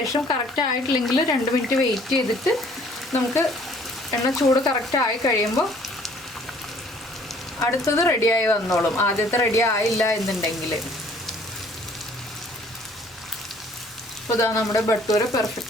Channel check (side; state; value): both; normal; correlation 0.57